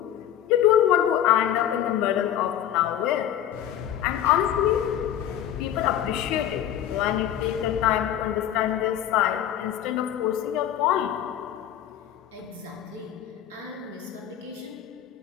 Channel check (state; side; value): quieter; right; 10.8 dB